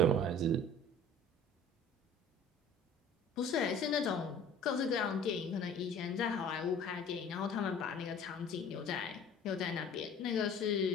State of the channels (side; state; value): both; normal; correlation 0.47